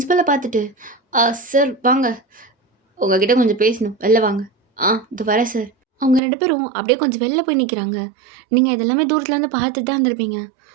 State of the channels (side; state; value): left; drops out; at 6.2 s